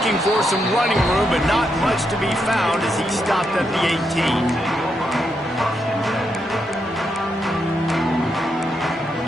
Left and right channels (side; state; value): both; normal; correlation 0.81